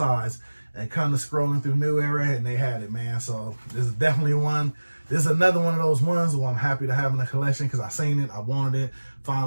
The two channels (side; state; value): both; inverted; correlation -1.00